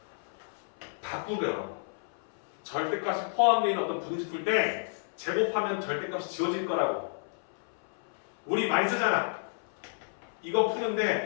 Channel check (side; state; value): right; silent; 57 dB below the other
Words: 바꾸더라고. 절대값이 포함되어 있는 어떤 부등식 풀 때 제곱하면 절대값이 지워질 거라고. 우리 많이 쓰잖아. 이거